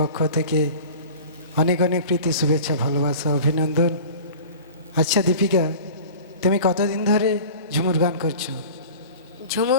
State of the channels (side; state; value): both; inverted; correlation -0.39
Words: থেকে অনেক অনেক প্রীতি শুভেচ্ছা, ভালোবাসা, অভিনন্দন। আচ্ছা দীপিকা, তুমি কতদিন ধরে ঝুমুর গান করছো?